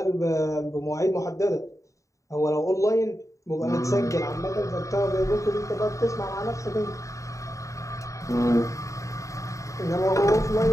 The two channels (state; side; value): late; right; 0.16 ms